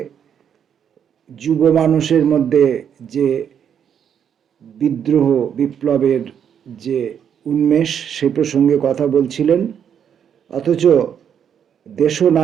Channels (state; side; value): quieter; left; 8.4 dB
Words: যুব মানুষের মধ্যে যে বিদ্রোহ বিপ্লবের যে উন্মেষ সে প্রসঙ্গে কথা বলছিলেন। অথচ